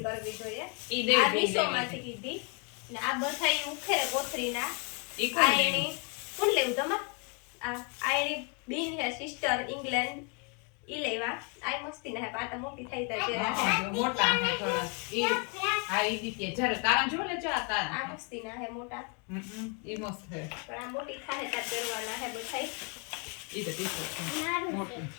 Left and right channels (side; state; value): right; quieter; 36.1 dB